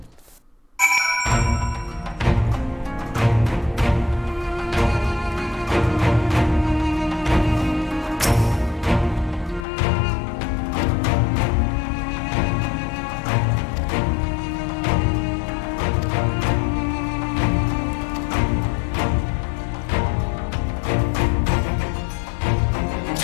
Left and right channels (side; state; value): right; drops out; at 9.7 s